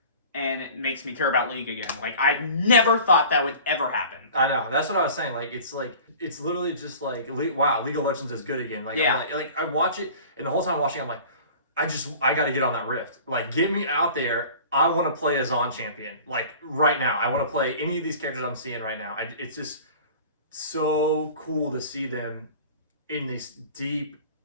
And it makes me care about League again. Like, I never thought that would ever happen. I know. That's what I was saying. Like, it's literally just like, wow, League of Legends is good again. Like, I'm like I watch it, and the whole time watching, I'm like, I got to get on that rift. Like, get me out there. I want to play a Zon champion. Like, right now. I want to play any of these characters I'm seeing right now. It's just so cool to see them in this deep,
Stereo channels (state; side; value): inverted; both; correlation -0.42